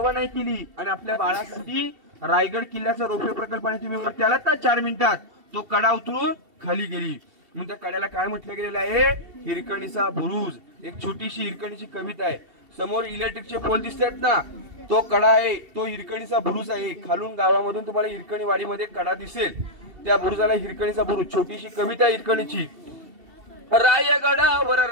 नाही केली आणि आपल्या बाळासाठी रायगड किल्ल्याचा रोपवे प्रकल्पाने तुम्ही वरती आलात ना 4 मिनिटात, तो कडा उतरून खाली गेली. म्हणून त्या कड्याला काय म्हटलं गेलेलं आहे? हिरकणीचा बुरुज. एक छोटीशी हिरकणीची कविता आहे. समोर इलेक्ट्रिकचे पोल दिसतात ना, तो कडा आहे, तो हिरकणीचा बुरुज आहे. खालून गावामधून तुम्हाला हिरकणी वाडीमध्ये कडा दिसेल, त्या बुरुजाला हिरकणीचा बुरुज. छोटीशी कविता हिरकणीची. रायगडावर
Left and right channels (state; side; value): late; left; 2.7 ms